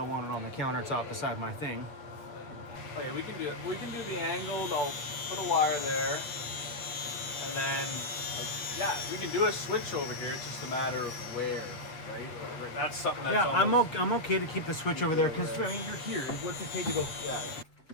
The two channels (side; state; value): right; late; 7.6 ms